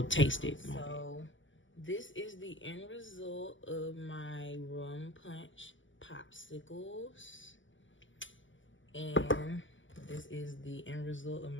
taste it. So this is the end result of my rum punch popsicles. And this is the end result of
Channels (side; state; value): right; late; 0.55 ms